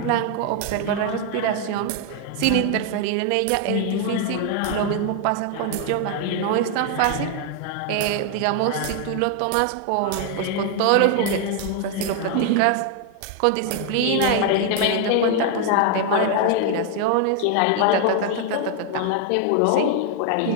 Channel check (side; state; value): both; different; correlation 0.00